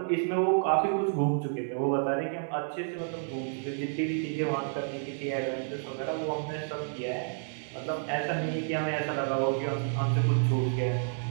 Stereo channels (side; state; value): left; silent; 58 dB below the other